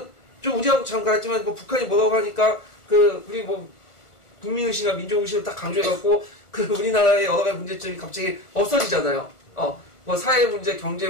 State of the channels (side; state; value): right; late; 1.4 ms